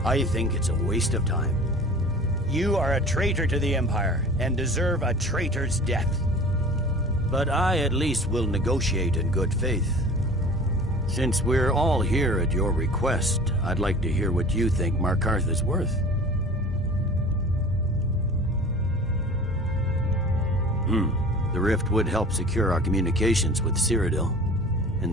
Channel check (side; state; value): both; normal; correlation 0.42